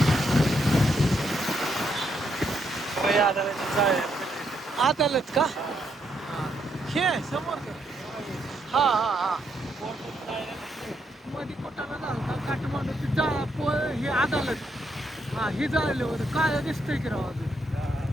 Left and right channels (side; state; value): both; normal; correlation 0.77